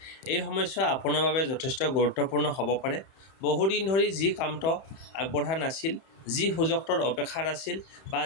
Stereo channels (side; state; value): right; late; 31 ms